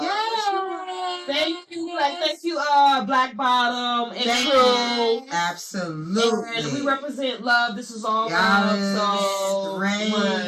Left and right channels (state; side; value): identical; both; correlation 1.00